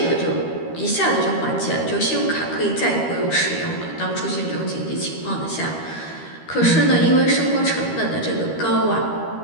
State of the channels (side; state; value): right; late; 13 ms